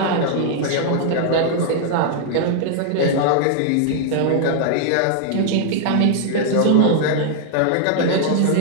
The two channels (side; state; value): both; different; correlation -0.01